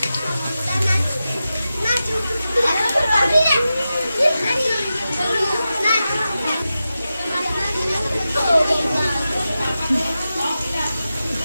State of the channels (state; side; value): inverted; both; correlation -0.92